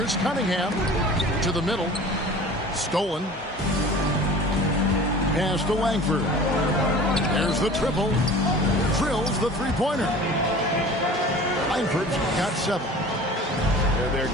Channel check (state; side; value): normal; both; correlation 0.42